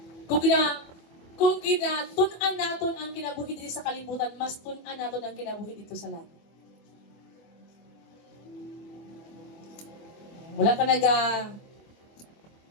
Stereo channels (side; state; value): right; late; 24 ms